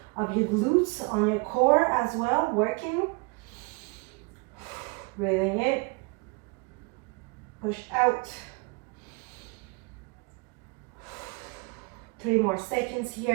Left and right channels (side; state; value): left; quieter; 29.8 dB